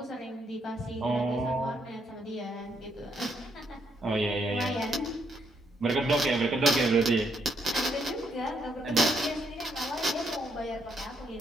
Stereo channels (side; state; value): both; normal; correlation 0.74